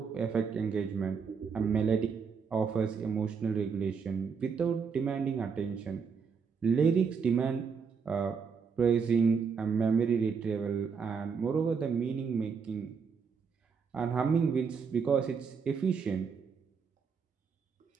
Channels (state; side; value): quieter; left; 5.9 dB